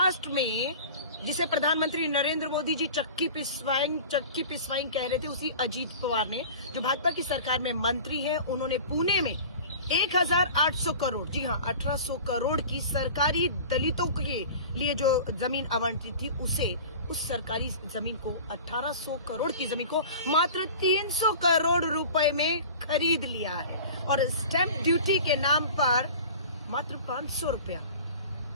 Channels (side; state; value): both; inverted; correlation -0.39